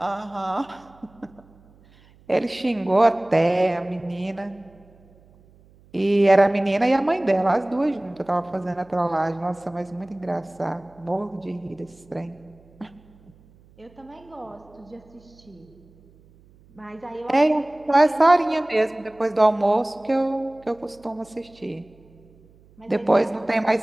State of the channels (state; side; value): noise; right; hum, 28 dB below the sound